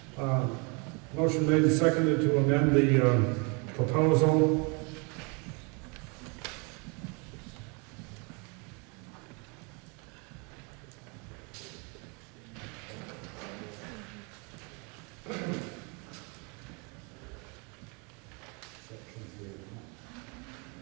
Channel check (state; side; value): quieter; left; 32.4 dB